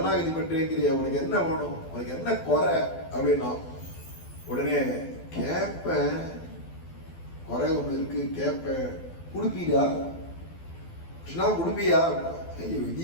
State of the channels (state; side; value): late; right; 12 ms